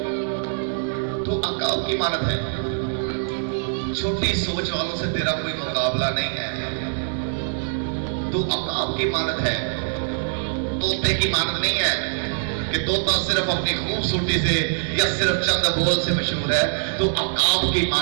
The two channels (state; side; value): silent; left; 63 dB below the other